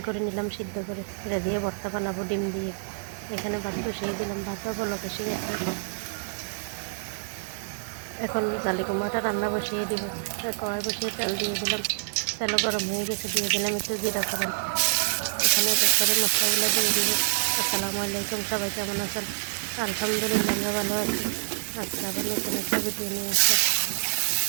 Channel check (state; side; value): silent; left; digital silence